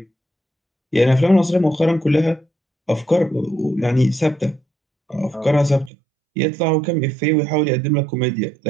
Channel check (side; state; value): left; drops out; at 5.9 s